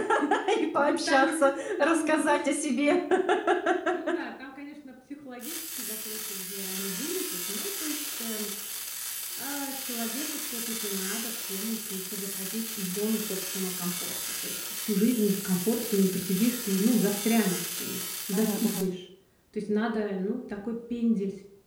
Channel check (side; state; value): both; identical; correlation 1.00